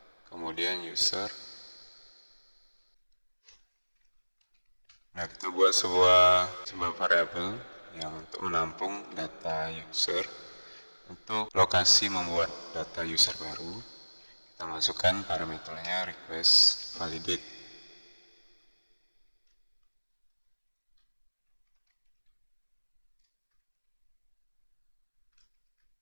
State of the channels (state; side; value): inverted; both; correlation -1.00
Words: kemudian user. Nah, kita buat sebuah variabel yang untuk menampung data user. Untuk lokasi membuat data user baru, kita masukkan parameternya request validate.